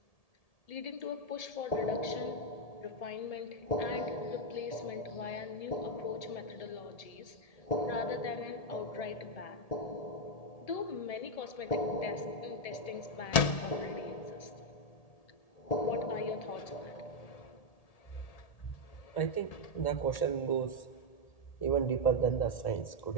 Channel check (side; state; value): right; late; 1.7 ms